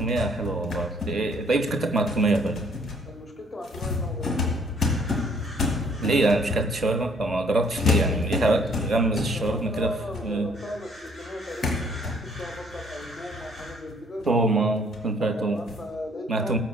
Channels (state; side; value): normal; both; correlation 0.62